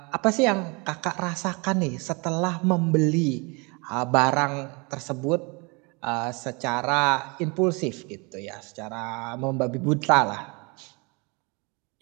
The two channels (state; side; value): quieter; left; 29.9 dB